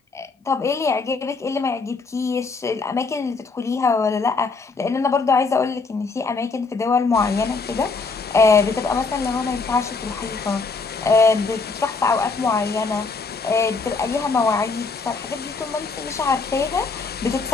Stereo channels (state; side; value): quieter; right; 4.3 dB